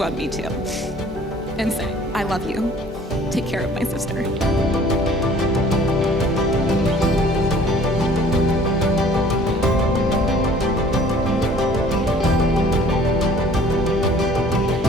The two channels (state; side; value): normal; both; correlation 0.53